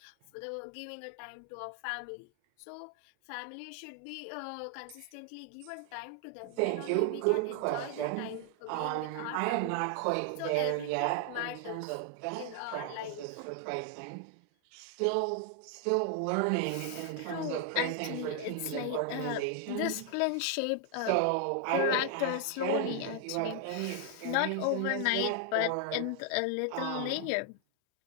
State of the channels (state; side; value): different; both; correlation 0.00